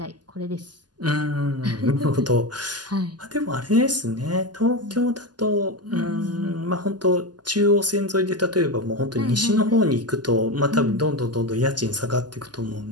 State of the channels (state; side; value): late; left; 0.70 ms